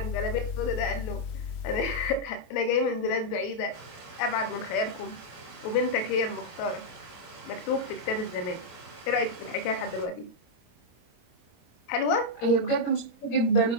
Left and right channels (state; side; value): late; right; 26 ms